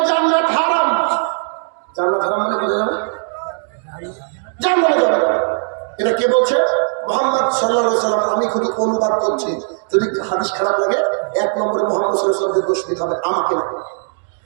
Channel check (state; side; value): silent; left; digital silence